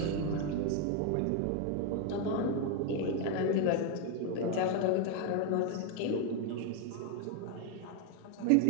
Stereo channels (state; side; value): different; both; correlation 0.01